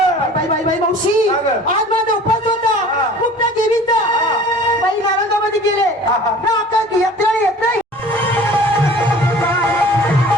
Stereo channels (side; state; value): both; normal; correlation 0.45